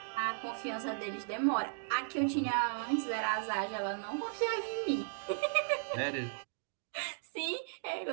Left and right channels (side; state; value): left; silent; digital silence